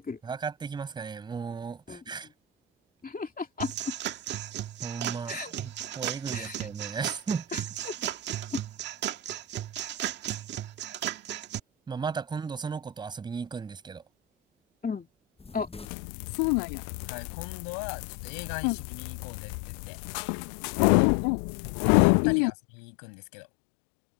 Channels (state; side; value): drops out; right; at 15.9 s